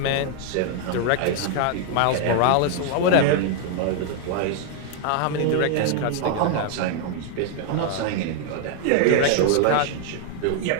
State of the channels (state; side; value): different; both; correlation 0.00